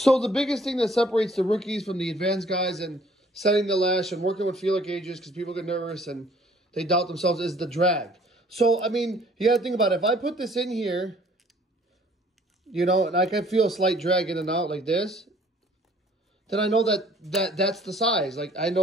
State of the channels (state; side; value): normal; both; correlation 0.57